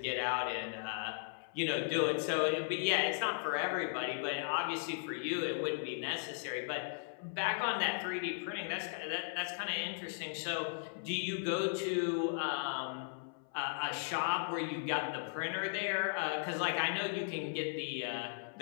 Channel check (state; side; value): silent; right; 53 dB below the other